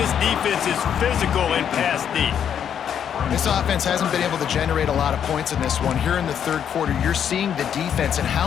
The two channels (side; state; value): right; quieter; 8.7 dB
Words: defense is physical and pass deep. This offense hasn't been able to generate a lot of points in this one. Here in the third quarter, you're seeing the defense and